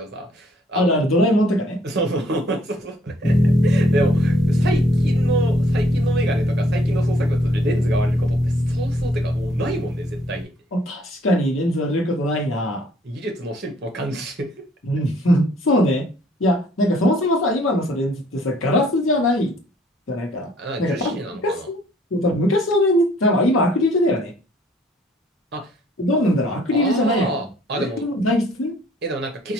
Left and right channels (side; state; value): both; normal; correlation 0.62